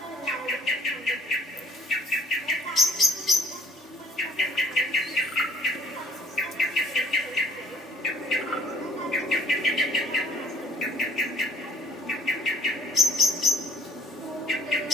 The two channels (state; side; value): normal; both; correlation 0.55